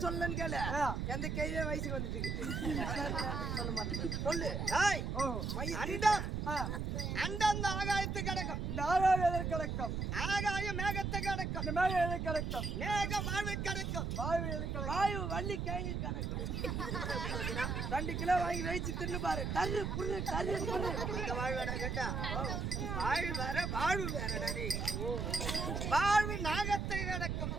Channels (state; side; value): noise; right; rumble, 2 dB below the sound